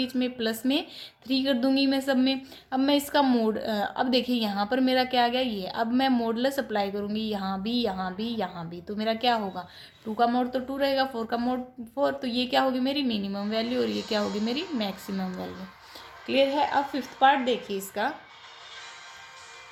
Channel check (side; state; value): both; identical; correlation 1.00